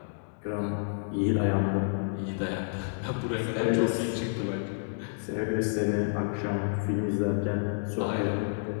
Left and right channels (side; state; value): right; silent; digital silence